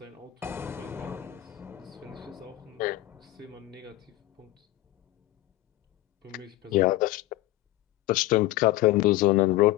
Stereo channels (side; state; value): right; quieter; 16.2 dB